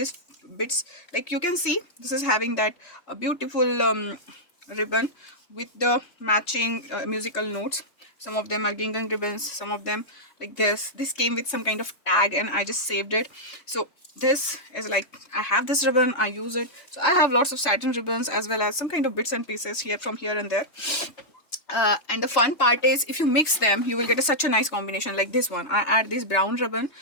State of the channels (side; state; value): right; late; 3.3 ms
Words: bits, like you can see this is having that beautiful ribbon with the matching musical notes. Some of them are gingham ribbons, some of them like this came with some kind of tag, and I just saved it. So this is like, I have this ribbon, I use it. So I have lots of satin ribbons as well as some kind of bits and pieces here, from here and there. And the fun part is, if you mix them, you will get such a nice combination. Like this one, I add this brown ribbon,